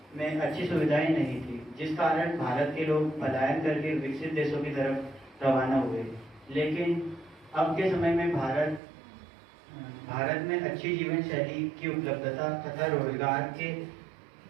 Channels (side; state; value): left; drops out; at 8.8 s